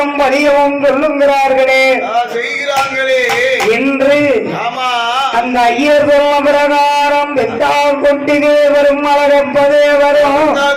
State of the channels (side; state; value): both; identical; correlation 1.00